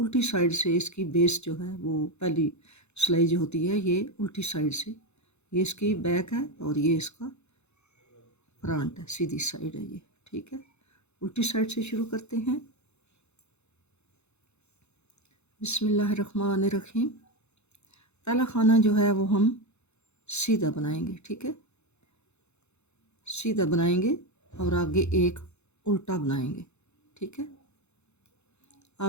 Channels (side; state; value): right; late; 0.81 ms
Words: साइड से इसकी बेस जो है वो पहली सिलाई जो होती है ये उल्टी साइड से। ये इसकी बैक है और ये इसका फ्रंट है, सीधी साइड है ये। ठीक है, उल्टी साइड से शुरू करते हैं। बिस्मिल्लाहिर्रहमानिर्रहीम। पहला खाना जो है वो हम सीधा बनाएंगे। ठीक है, सीधा बनाएंगे और आगे एक उल्टा बनाएंगे। ठीक है,